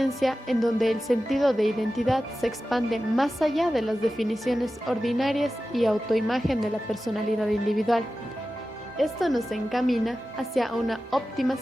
en donde el sentido de identidad se expande más allá de las definiciones ordinarias y autoimagen de la personalidad individual. Esto nos encamina hacia una óptima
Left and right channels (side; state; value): both; normal; correlation 0.94